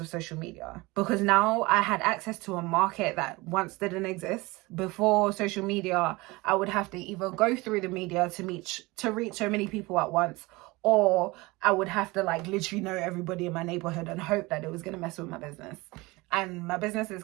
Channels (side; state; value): left; quieter; 22.8 dB